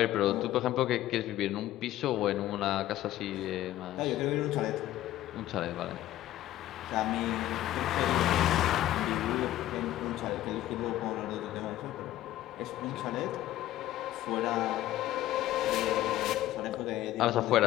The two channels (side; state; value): right; quieter; 14.2 dB